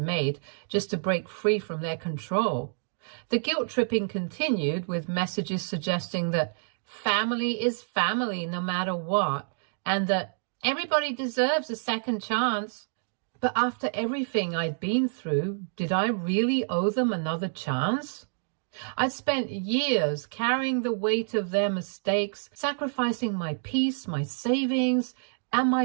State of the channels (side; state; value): left; silent; digital silence